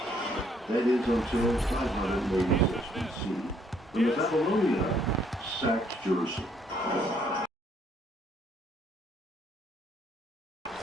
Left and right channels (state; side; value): normal; both; correlation 0.67